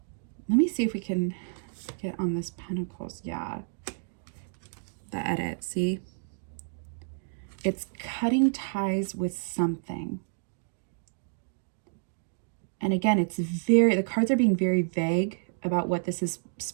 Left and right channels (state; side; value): silent; left; digital silence